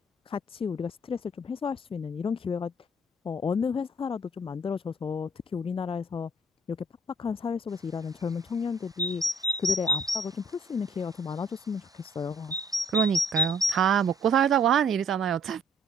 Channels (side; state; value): both; normal; correlation 0.58